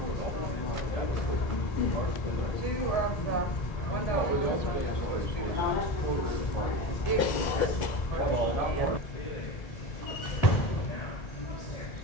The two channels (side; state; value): right; late; 2.0 ms